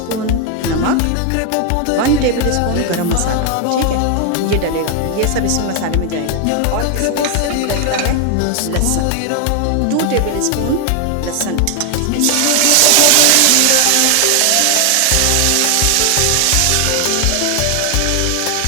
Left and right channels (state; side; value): different; both; correlation 0.00